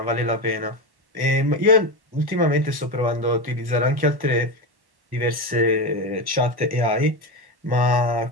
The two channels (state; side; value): late; left; 1.1 ms